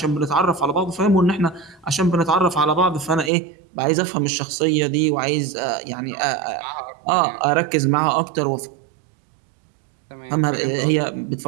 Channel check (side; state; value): left; drops out; at 3.3 s